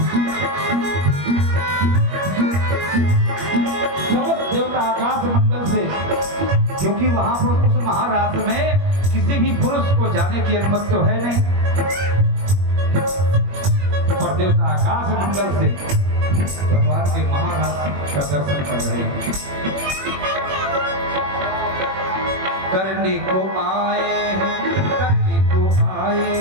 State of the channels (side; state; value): left; late; 21 ms